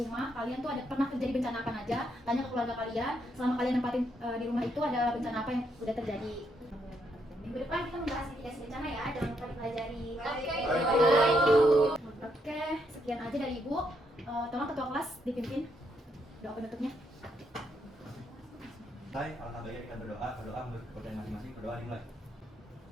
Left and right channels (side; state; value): both; normal; correlation 0.76